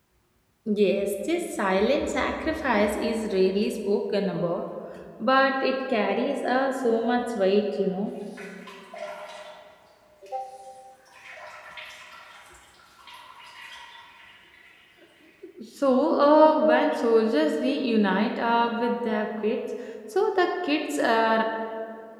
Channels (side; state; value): both; identical; correlation 1.00